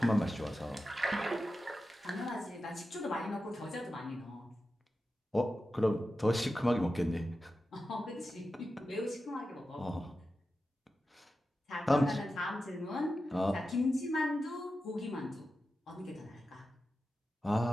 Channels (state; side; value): normal; both; correlation 0.92